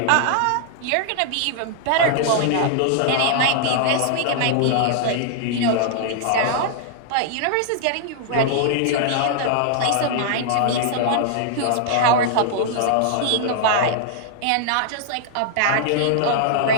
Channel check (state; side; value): different; both; correlation -0.01